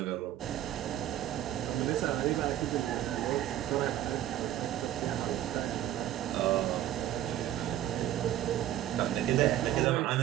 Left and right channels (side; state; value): left; quieter; 12.4 dB